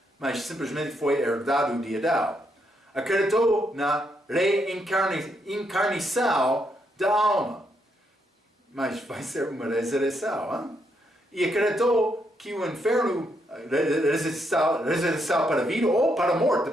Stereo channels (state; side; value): normal; both; correlation 0.77